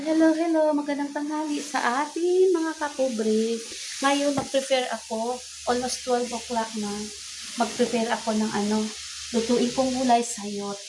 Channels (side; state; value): both; identical; correlation 1.00